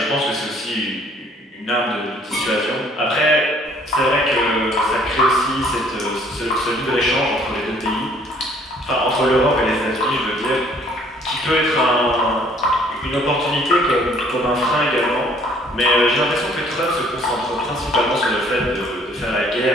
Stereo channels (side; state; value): both; normal; correlation 0.59